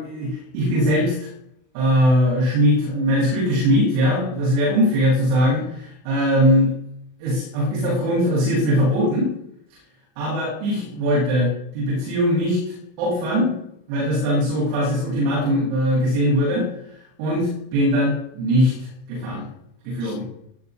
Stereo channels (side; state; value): left; late; 39 ms